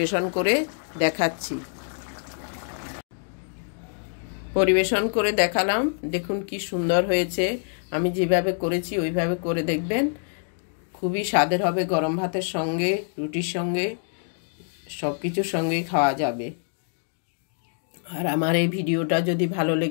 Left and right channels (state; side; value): silent; right; digital silence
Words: করে দেখাচ্ছি। পরিবেশন করে দেখালাম। দেখুন কি সুন্দর হয়েছে। আমি যেভাবে করেছি ওইভাবে করে দেখবেন, খুবই স্বাদের হবে। গরম ভাতের সঙ্গে, রুটির সঙ্গে, সব কিছুর সঙ্গেই খাওয়া যাবে। আর আমার এই ভিডিওটা যদি ভালো